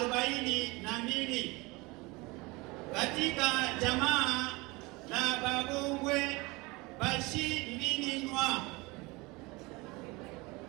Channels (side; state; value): left; quieter; 24.2 dB